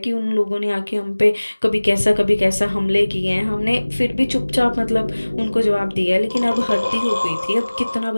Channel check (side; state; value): both; inverted; correlation -1.00